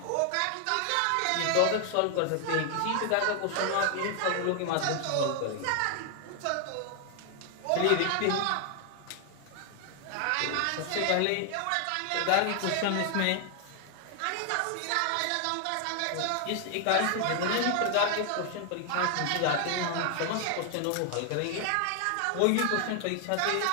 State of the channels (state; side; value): different; both; correlation 0.00